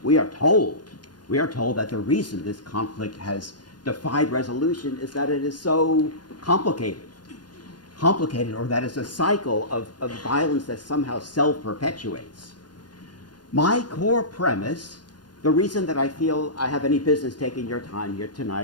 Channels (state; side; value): late; right; 0.70 ms